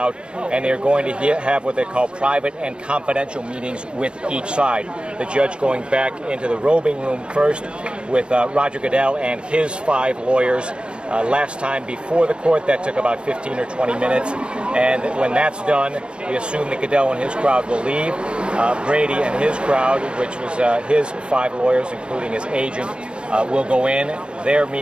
and they're going to have what they call private and confidential meetings with each side. The judge going back into the robing room first with Roger Goodell and his 5 lawyers. Last time before the court, that took about 15 or 20 minutes. And when that's done, we assume that Goodell and his crowd will leave. Brady and his crowd, which was his 5 lawyers, including his agent, will go in. Their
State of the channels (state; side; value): late; left; 0.056 ms